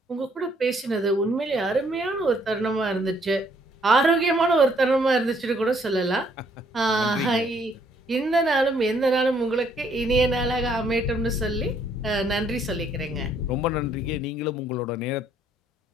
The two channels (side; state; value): both; normal; correlation 0.66